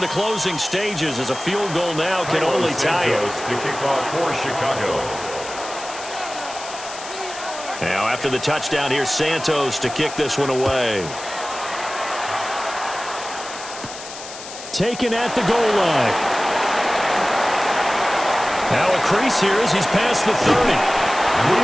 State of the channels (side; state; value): left; noise; hiss, 12 dB below the sound